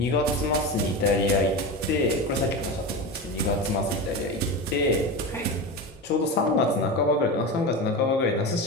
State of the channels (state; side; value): normal; both; correlation 0.23